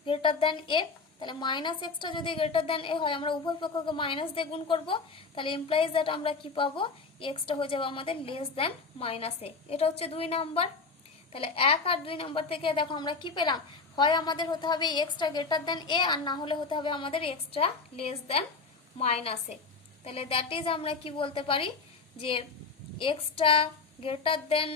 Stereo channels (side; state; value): right; quieter; 4.4 dB